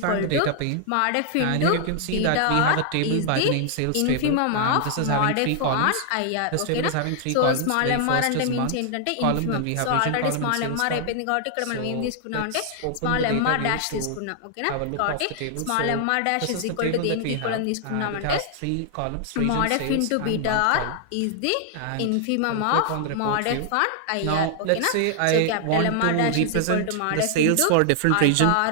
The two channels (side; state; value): both; different; correlation 0.00